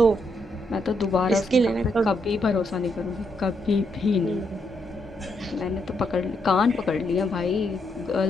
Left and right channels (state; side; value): normal; both; correlation 0.78